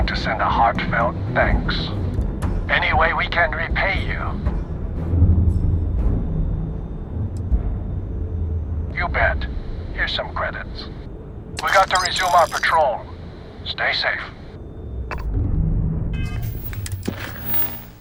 to send a heartfelt thanks. Any way we can repay you? You bet. Here's some credits. We got to resume our patrol. Stay safe.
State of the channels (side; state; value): both; identical; correlation 1.00